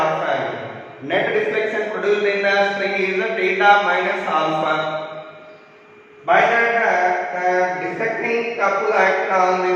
angle. Net deflection produced in the string is theta minus alpha. By that deflecting couple act on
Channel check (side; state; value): both; identical; correlation 1.00